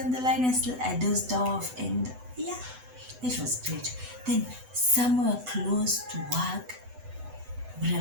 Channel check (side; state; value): left; late; 8.0 ms